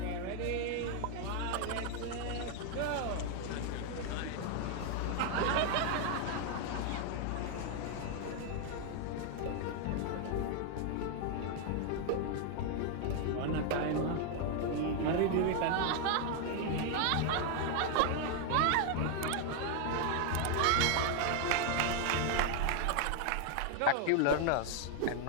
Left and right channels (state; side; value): different; both; correlation 0.00